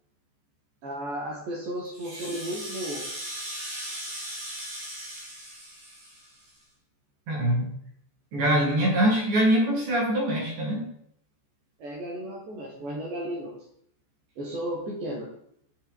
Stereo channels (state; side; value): late; left; 14 ms